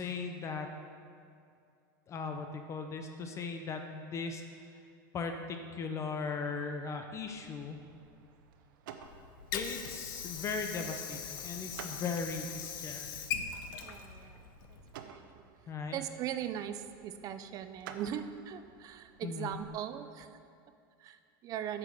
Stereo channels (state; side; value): normal; both; correlation 0.23